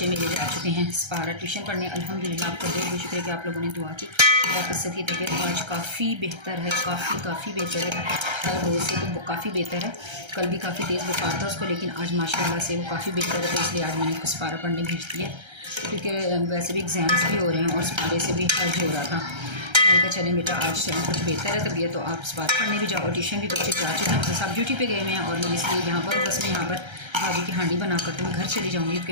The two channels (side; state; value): left; late; 1.3 ms